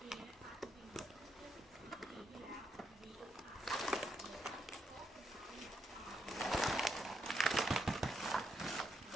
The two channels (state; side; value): normal; both; correlation 0.79